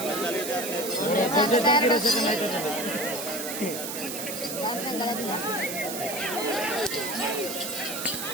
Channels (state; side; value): noise; right; hiss, 6 dB below the sound